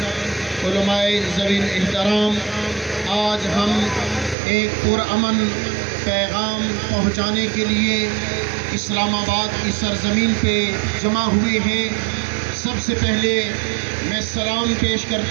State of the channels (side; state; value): left; drops out; at 4.4 s